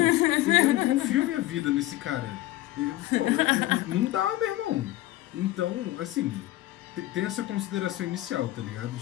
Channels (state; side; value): quieter; right; 16.4 dB